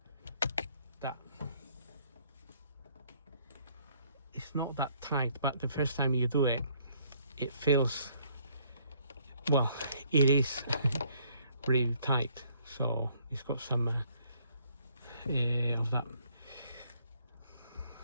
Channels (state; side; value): inverted; both; correlation -0.65